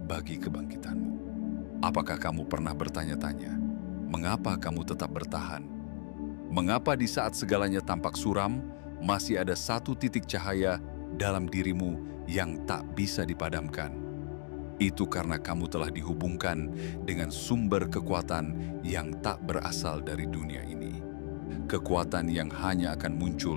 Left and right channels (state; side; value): silent; right; digital silence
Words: bagi kebangkitanmu. Apakah kamu pernah bertanya-tanya, mengapa kamu tetap bertahan? Mengapa di saat segalanya tampak suram, masih ada satu titik cahaya dalam dirimu yang tak bisa dipadamkan? Itu karena kamu telah dihubungkan dengan sumber kekuatan yang tak berasal dari dunia ini. Kekuatan yang hanya akan